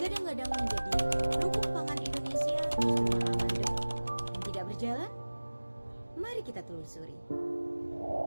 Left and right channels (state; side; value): inverted; both; correlation -1.00